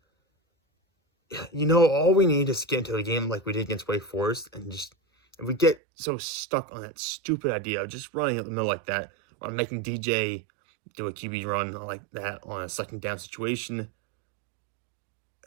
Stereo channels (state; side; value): drops out; left; at 5.8 s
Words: all we need is to get into a game like we did against Wake Forest, and just if we get so stuck on that stupid idea of just running up the middle like that, or making DJ do a QB run like that on a second down situation,